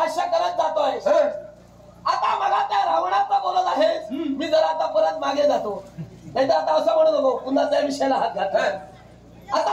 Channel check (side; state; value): both; identical; correlation 1.00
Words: करत जातोयस. आता मला त्या रावणाचा बोलत आहेस, मी जर आता परत मागे जातो. नाही तर आता असं म्हणू नको पुन्हा त्या विषयाला हात घातला.